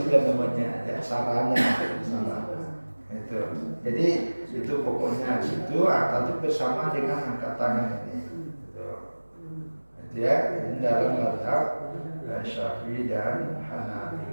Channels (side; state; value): both; inverted; correlation -1.00